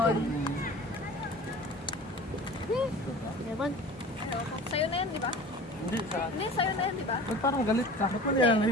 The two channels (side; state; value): both; normal; correlation 0.40